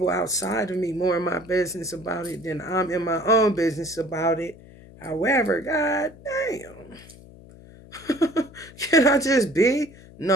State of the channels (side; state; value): left; noise; hum, 21 dB below the sound